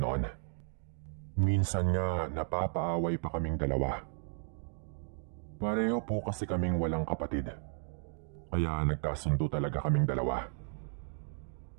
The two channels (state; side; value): silent; left; digital silence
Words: Minsan nga napapaaway pa kaming dalawa. Pareho po kasi kaming walang kapatid. Kaya nagkasundo talaga kaming dalawa.